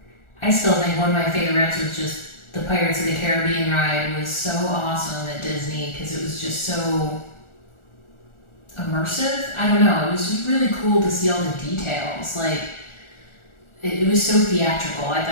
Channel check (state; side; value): late; right; 1.4 ms